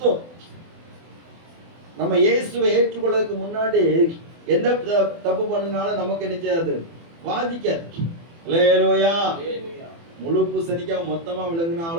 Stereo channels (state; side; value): late; left; 24 ms